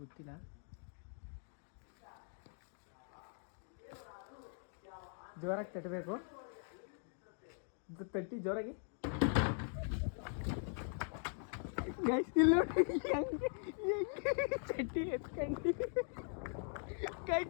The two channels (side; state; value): right; silent; 50 dB below the other